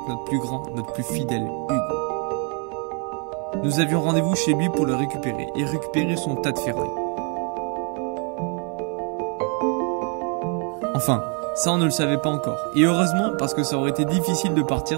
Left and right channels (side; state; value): left; quieter; 37.2 dB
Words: notre plus grand, notre plus fidèle Hugo. Nous avions rendez-vous chez lui pour le récupérer et récupérer son tas de ferraille. Enfin, ça on ne le savait pas encore. Et heureusement parce que ça aurait été difficile de